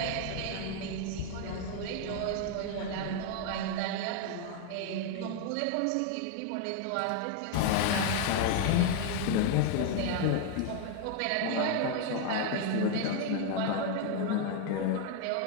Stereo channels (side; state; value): both; different; correlation 0.00